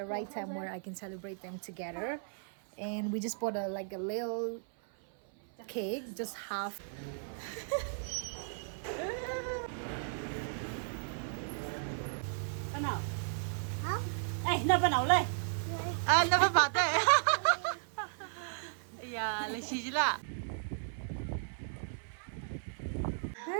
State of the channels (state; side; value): silent; left; 54 dB below the other